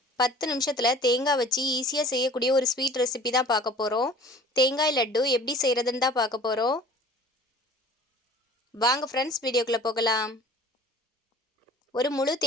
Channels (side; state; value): both; normal; correlation 0.46